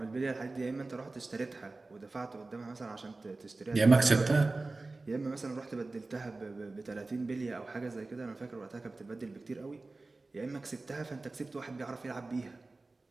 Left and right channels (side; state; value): left; quieter; 3.4 dB